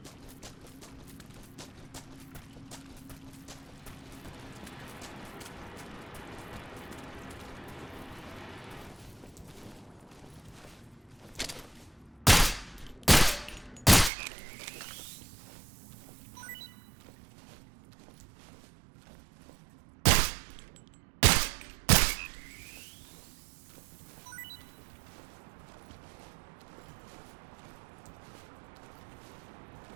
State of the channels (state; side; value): drops out; left; at 14.1 s